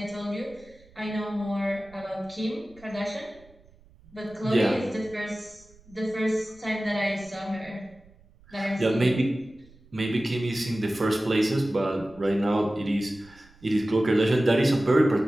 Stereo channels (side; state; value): right; noise; rumble, 26 dB below the sound